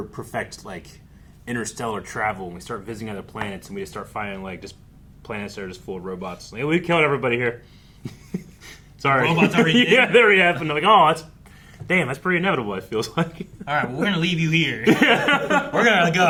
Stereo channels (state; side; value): identical; both; correlation 1.00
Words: perfect like interstellar travel and we start visiting other planets and we just start finding like just planets that are just full of robots. Like, we killed everybody here. Sorry. Robots already did? Yeah, they already happened. Like, oh, that's pretty inevitable. It feels like. All right, well, we're gonna leave you here. We're gonna